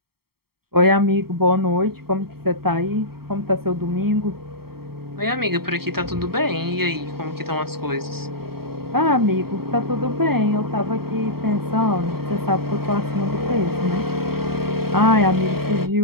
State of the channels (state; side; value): late; left; 0.95 ms